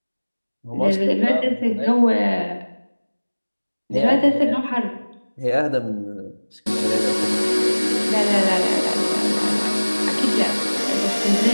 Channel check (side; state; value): both; inverted; correlation -1.00